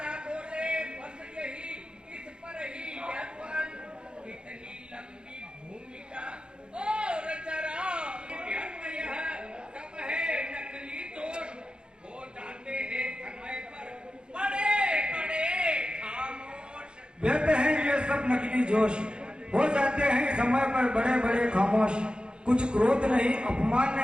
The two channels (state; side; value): late; left; 0.051 ms